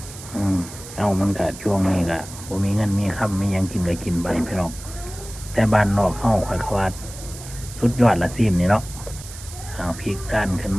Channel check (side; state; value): right; noise; hiss, 14 dB below the sound